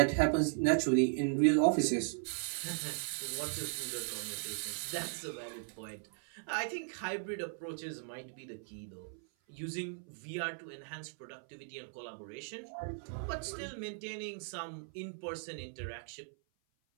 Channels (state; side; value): silent; left; 53 dB below the other